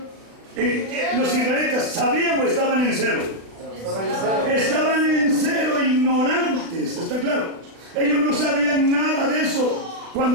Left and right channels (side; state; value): left; late; 36 ms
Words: los israelitas sabían o estaban en cero. Estaban en cero, ignorantes, ¿está claro? Ellos no sabían nada de eso.